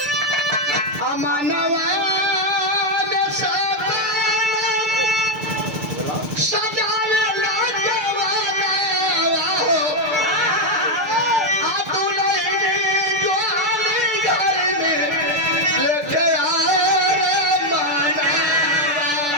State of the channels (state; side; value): late; left; 6.8 ms